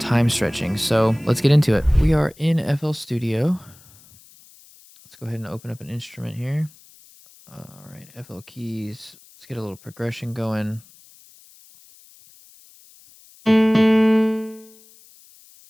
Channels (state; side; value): noise; left; hiss, 25 dB below the sound